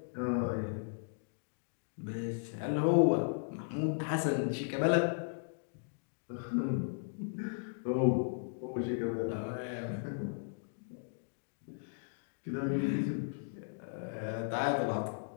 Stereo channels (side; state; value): right; silent; digital silence